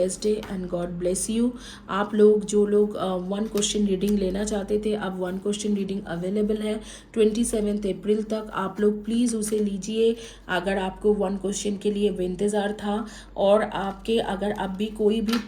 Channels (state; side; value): identical; both; correlation 1.00